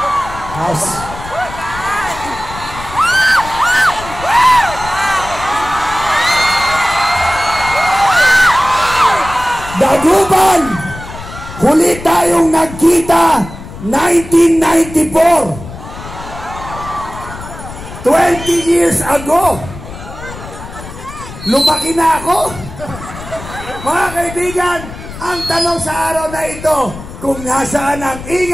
House. Dagupan, huli tayong nagkita 1994. 20 years ago, lumaki na ako. Mga kaibigan, ang tanong sa araw na ito, kung nasaan ang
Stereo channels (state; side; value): noise; left; rumble, 13 dB below the sound